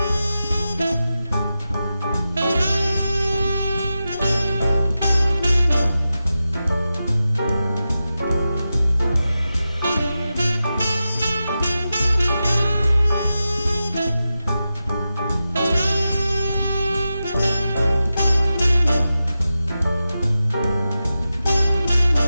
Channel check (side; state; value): both; inverted; correlation -0.92